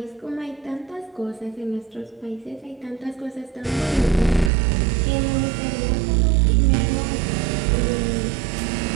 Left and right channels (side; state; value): left; drops out; at 4.5 s